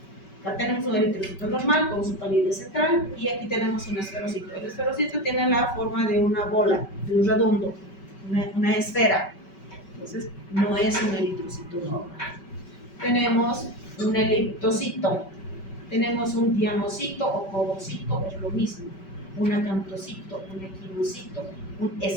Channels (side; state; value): right; late; 5.2 ms